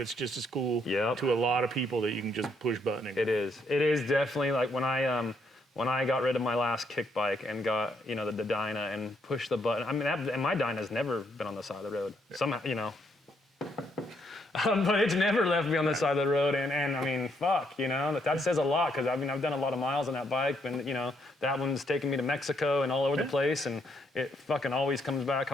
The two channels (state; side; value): normal; both; correlation 0.74